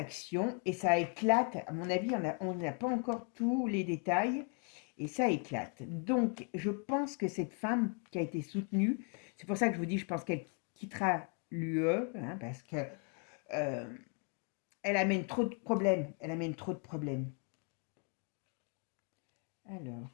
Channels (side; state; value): right; quieter; 39.8 dB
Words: et ça éclate. À mon avis, on n'a pas encore tous les détails, et ça éclate. Donc, je pense que cette femme qui a été soutenue, c'est pour ça que je vous dis, je pense qu'elle quittera l'UE, parce que euh, elle amène trop de problèmes. Elle amène trop de problèmes. Alors,